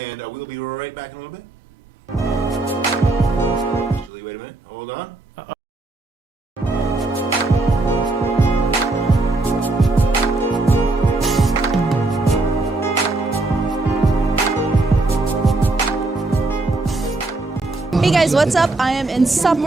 we'll be right back in a little bit. Actually, wait a minute. Hold on. Hey guys, what's up? I am in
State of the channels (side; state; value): left; quieter; 3.1 dB